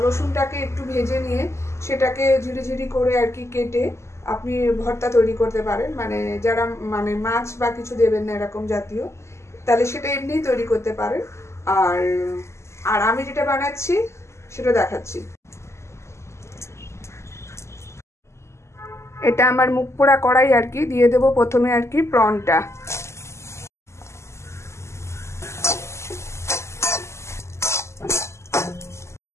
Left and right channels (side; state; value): right; late; 0.13 ms